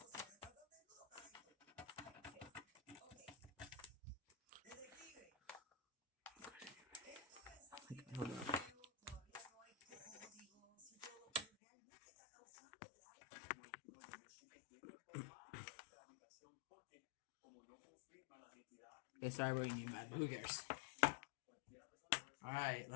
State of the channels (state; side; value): drops out; right; at 11.5 s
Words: Hold on. Okay, sorry about you, bad, but who cares? Alright,